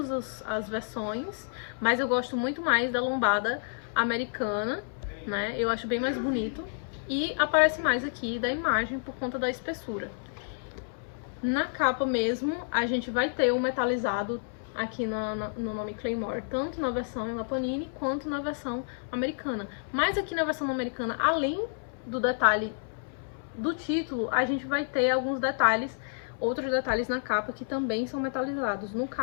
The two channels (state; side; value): silent; right; 58 dB below the other